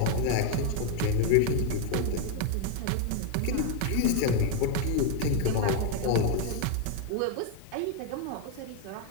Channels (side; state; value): both; different; correlation 0.01